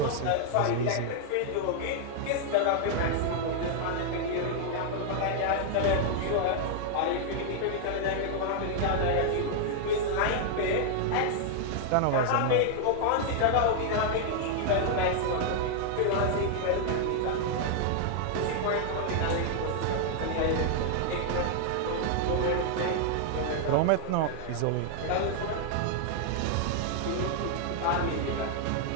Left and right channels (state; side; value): different; both; correlation 0.00